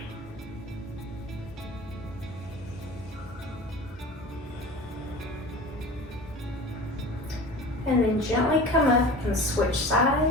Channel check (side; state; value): both; normal; correlation 0.37